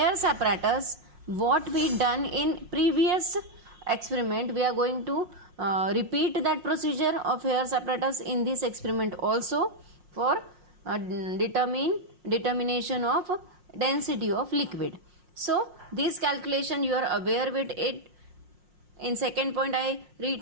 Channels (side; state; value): left; late; 5.6 ms